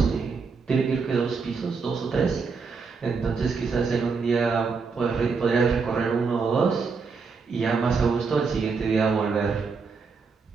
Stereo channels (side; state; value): left; quieter; 5.0 dB